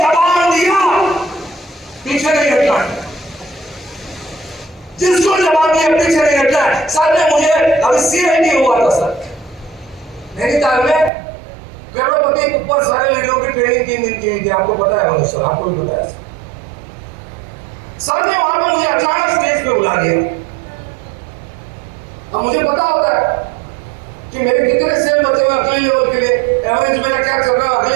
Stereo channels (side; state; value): left; drops out; at 11.1 s